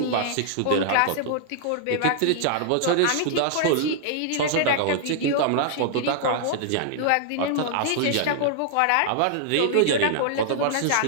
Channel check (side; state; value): both; different; correlation -0.01